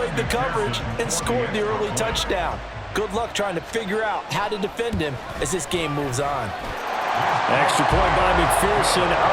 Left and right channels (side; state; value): both; identical; correlation 1.00